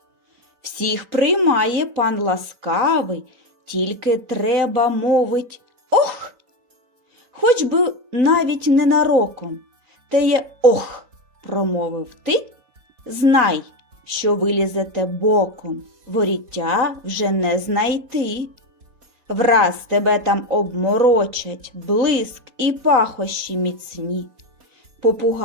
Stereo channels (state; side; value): late; left; 3.9 ms